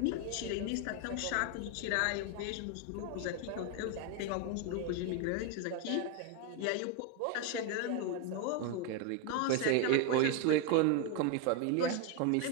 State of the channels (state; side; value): different; both; correlation 0.01